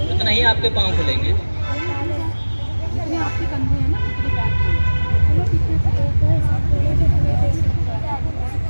उतना ही आपके पाँव खुलेंगे। आपके कंधे हैं ना, इतने बैक चलो पीछे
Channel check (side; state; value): both; inverted; correlation -1.00